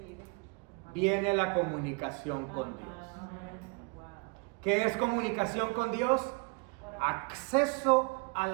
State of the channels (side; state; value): left; quieter; 32.9 dB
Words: viene la comunicación con Dios. ¿Qué es comunicación con Dios? Acceso a